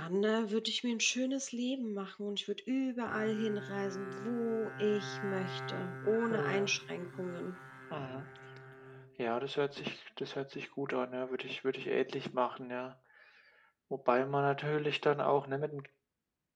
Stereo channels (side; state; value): both; identical; correlation 1.00